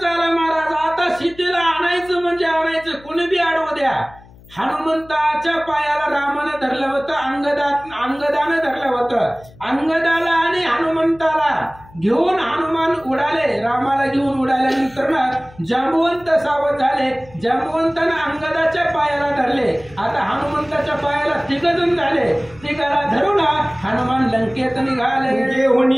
महाराज, आता सीतेला आणायचं म्हणजे आणायचं, कुणी बी अडवू द्या. हनुमंताच्या पायाला रामानं धरलं होतं, अंगदानं धरलं होतं. अंगदाला आणि हनुमंताला घेऊन हनुमान उडाले. रामाला घेऊन उडाल्यानंतर जांबवंत सावध झाले. जांबवंतानं अंगदाच्या पायाला धरले. आता हनुमंताच्या पायाला 3 जण झाले. 3 धरून हनुमान लंकेत निघाले.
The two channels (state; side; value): noise; left; hum, 23 dB below the sound